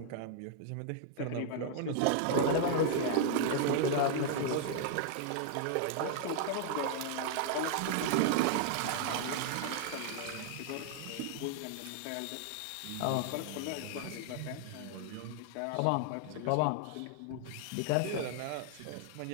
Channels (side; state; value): both; different; correlation 0.00